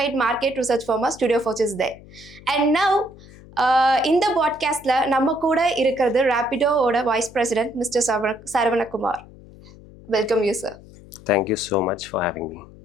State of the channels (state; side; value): noise; left; hum, 21 dB below the sound